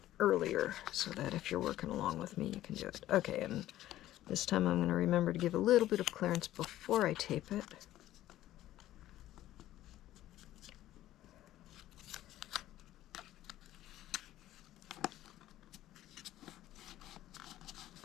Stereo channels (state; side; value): quieter; right; 14.1 dB